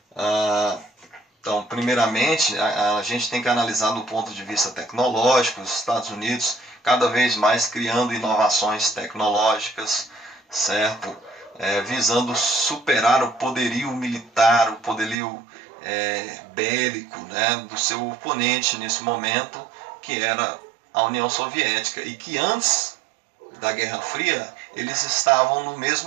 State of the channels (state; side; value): drops out; left; at 15.2 s